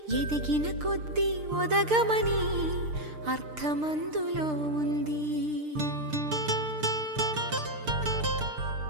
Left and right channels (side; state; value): left; late; 6.6 ms